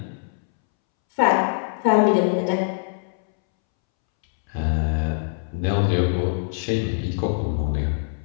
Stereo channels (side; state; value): right; silent; 63 dB below the other